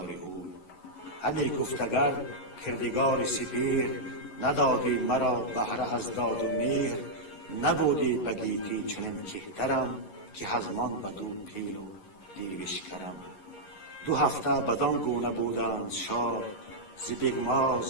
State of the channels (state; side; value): late; right; 11 ms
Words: اوی. همی گفت اگر کردگار سپیر، ندادی مرا بهره از داد و مهر. نبودی بگیتی چنین کهترم، که هزمان بدو پیر و دیوش کرم. 2 هفته بدان گونه بودند شاد، ز